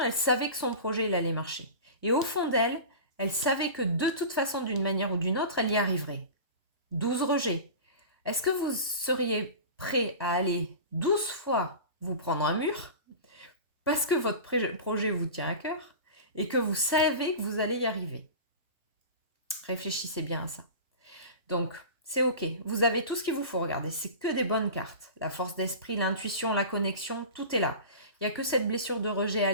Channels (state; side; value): inverted; both; correlation -0.33